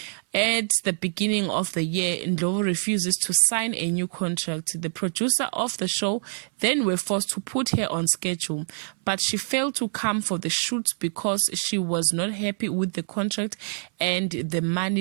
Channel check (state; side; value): silent; left; 58 dB below the other